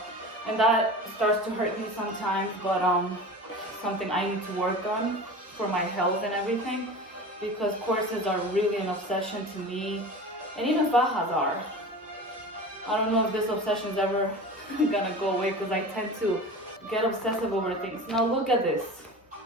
and that starts to hurt me sometimes, but something I need to work on for my health and everything, because corsets are really an obsession to me, and even fajas are. I don't know if this obsession is ever gonna go away, because I tend to get obsessive over things. Now look at this.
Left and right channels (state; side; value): normal; both; correlation 0.34